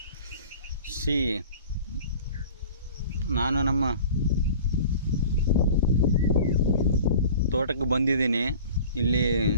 See, ನಾನು ನಮ್ಮ ತೋಟಕ್ಕೆ ಬಂದಿದ್ದೀನಿ. ಇಲ್ಲಿ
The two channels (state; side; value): inverted; both; correlation -0.43